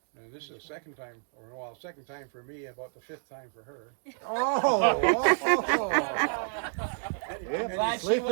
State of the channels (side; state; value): left; silent; digital silence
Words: And this is the second time for me, about the fifth time for her. Glad she